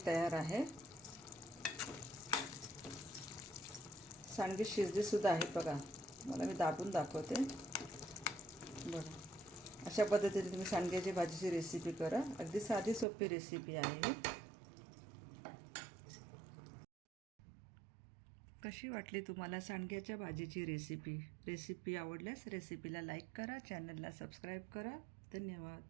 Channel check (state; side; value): drops out; left; at 13.1 s